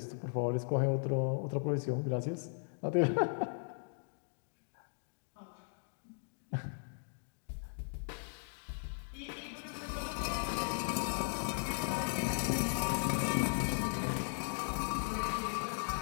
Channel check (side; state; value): right; silent; digital silence